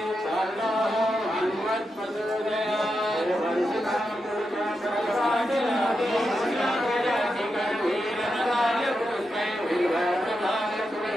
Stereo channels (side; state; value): both; normal; correlation 0.87